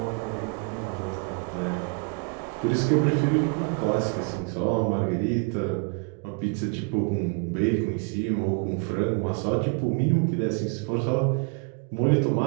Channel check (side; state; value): left; quieter; 36.1 dB